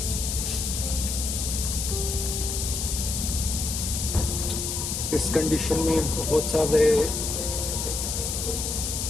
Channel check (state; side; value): noise; left; hiss, 2 dB below the sound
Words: इस कंडीशन में बहुत सारे